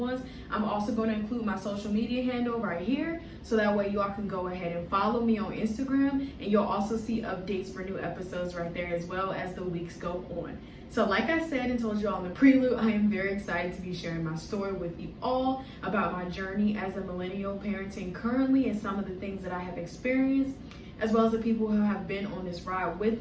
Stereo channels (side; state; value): both; identical; correlation 1.00